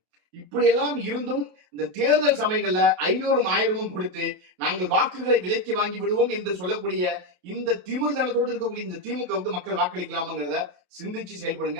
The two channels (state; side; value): late; left; 28 ms